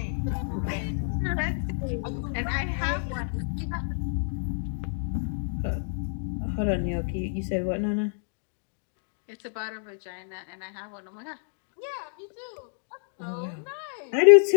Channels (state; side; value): silent; right; digital silence